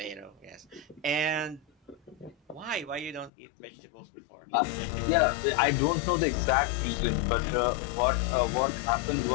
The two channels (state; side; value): drops out; right; at 3.3 s